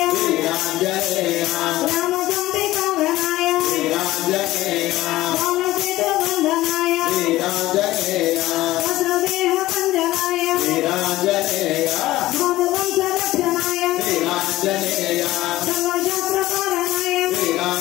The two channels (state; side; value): quieter; right; 16.5 dB